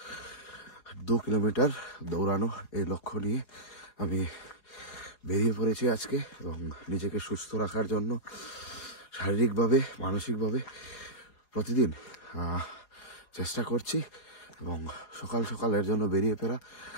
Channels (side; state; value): right; late; 4.9 ms